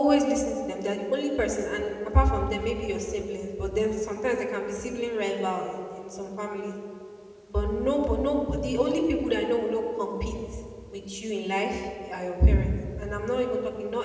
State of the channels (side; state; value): both; identical; correlation 1.00